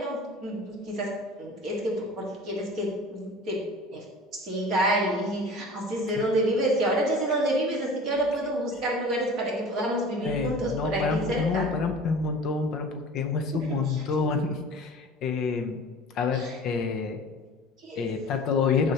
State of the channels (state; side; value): normal; both; correlation 0.41